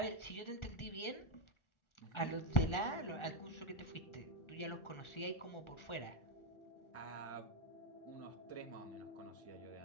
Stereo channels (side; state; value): right; late; 1.4 ms